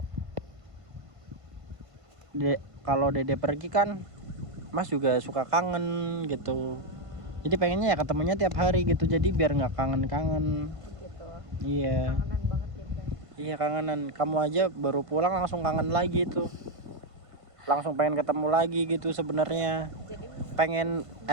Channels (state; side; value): late; left; 1.5 ms